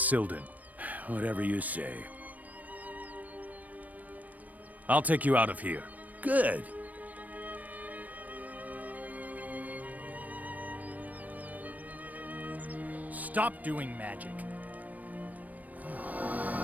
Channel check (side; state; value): left; late; 0.076 ms